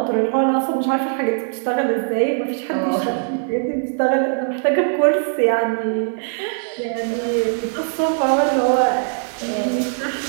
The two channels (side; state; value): left; silent; 56 dB below the other